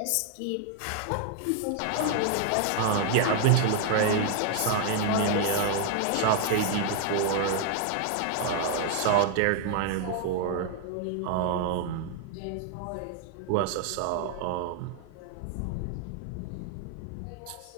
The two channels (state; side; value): different; both; correlation 0.00